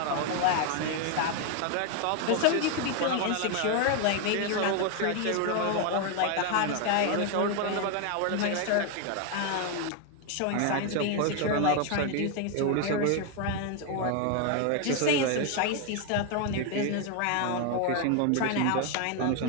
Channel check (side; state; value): both; different; correlation 0.01